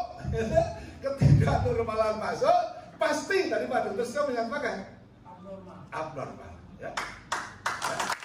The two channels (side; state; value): both; identical; correlation 1.00